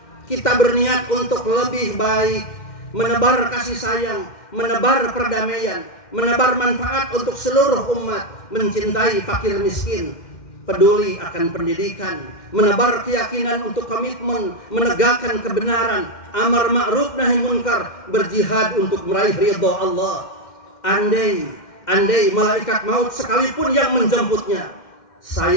kita berniat untuk lebih baik, menebar kasih sayang, menebar perdamaian, menebar manfaat untuk seluruh umat, mencintai fakir miskin, peduli akan pendidikan, menebar keyakinan untuk komitmen, menegakkan kebenaran, amar ma'ruf nahi munkar, berjihad untuk meraih ridho Allah. Andai malaikat maut sekalipun yang menjemputnya,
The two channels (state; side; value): late; right; 2.1 ms